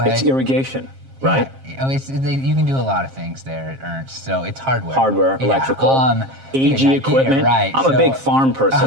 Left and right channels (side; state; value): left; late; 7.5 ms